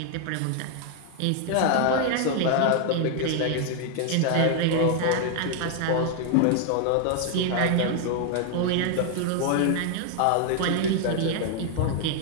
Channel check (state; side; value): different; both; correlation 0.00